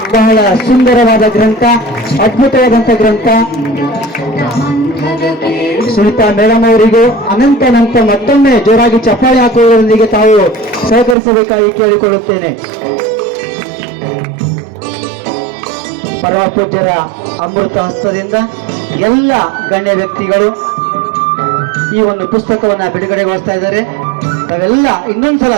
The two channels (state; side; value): drops out; left; at 11.2 s